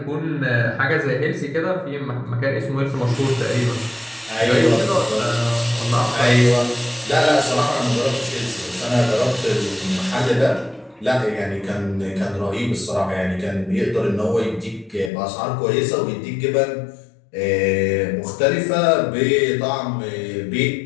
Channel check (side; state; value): right; drops out; at 15.1 s